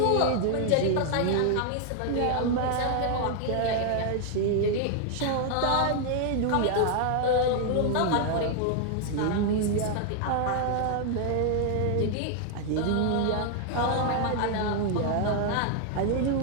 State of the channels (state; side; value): different; both; correlation 0.00